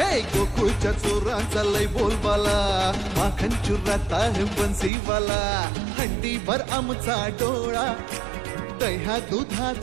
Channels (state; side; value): drops out; left; at 4.9 s